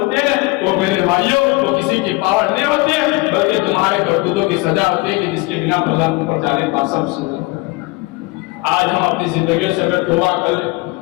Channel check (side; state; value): right; quieter; 22.5 dB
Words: ہیں, وہ میرے بھائیوں تو کسی کی پاور نہیں ہوتی ہے بلکہ تمہارے کرتوتوں کی سزا ہوتی ہے کہ جس کے بنا پر اوپر جانے کا سب سزا. آج ہم اپنی زندگیوں سے اگر توبہ کر لیں,